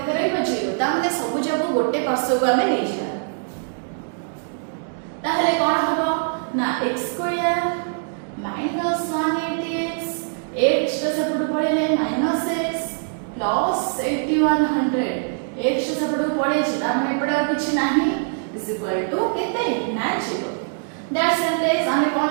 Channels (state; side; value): silent; left; digital silence